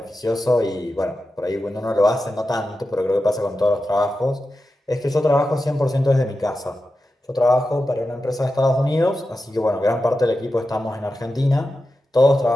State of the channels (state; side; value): normal; both; correlation 0.91